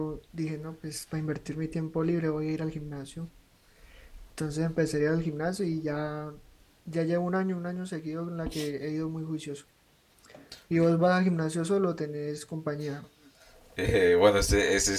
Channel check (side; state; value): both; identical; correlation 1.00